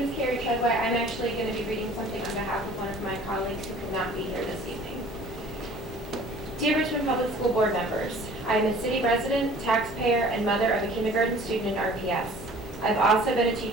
is Carrie Treadway. I'm actually going to be reading something on behalf of one of my colleagues who could not be here this evening. Dear Richmond Public School Board members, I am a city resident, taxpayer, and mother of a kindergarten student in RPS. I've also been a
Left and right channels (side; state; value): both; normal; correlation 0.49